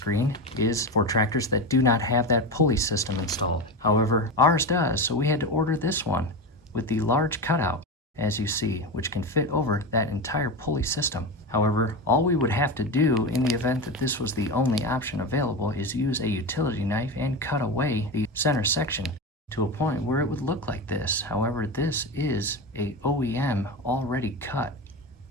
is for tractors that do not have that pulley system installed. However, ours does, so we had to order this one with the large cutout, as you see, which can fit over that entire pulley system. However, all we would have to do in the event that this was the only option available is use a utility knife and cut away the center section to a point where it would look like this. However, this is a OEM already cut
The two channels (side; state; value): both; normal; correlation 0.21